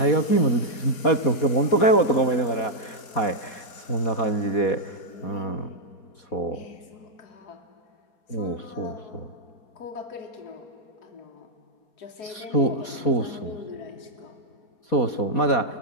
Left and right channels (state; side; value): late; right; 4.2 ms